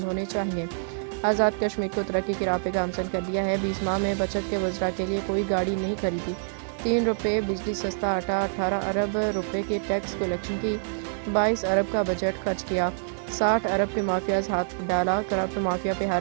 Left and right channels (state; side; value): silent; left; digital silence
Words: होने चाहिए। आज़ाद कश्मीर को तरक्की की राह पे गामजन कर दिया है। 20 माह में बचत के वज़रा के लिए कोई गाड़ी नहीं खरीदी। 3 रुपये बिजली, सस्ता आटा, 18 अरब रुपए की टैक्स कलेक्शन की, 22 अरब का बजट खर्च किया, 60 अरब के माफियाज हाथ डाला, करप्ट माफिया पे